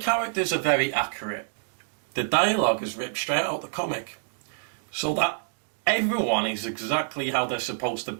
are very accurate. The dialogue is ripped straight out of the comic. So that everyone is exactly how they're supposed to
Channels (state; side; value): silent; left; digital silence